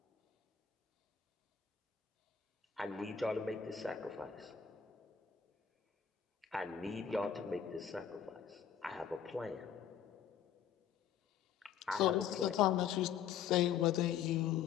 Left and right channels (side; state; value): right; quieter; 8.6 dB